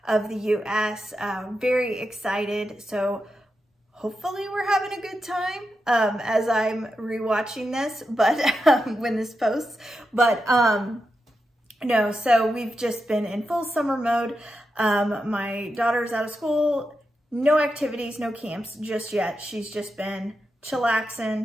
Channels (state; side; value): normal; both; correlation 0.88